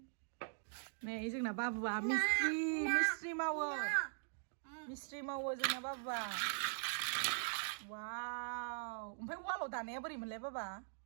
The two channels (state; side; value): silent; left; digital silence